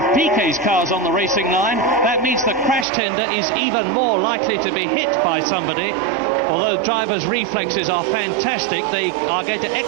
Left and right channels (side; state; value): left; drops out; at 2.9 s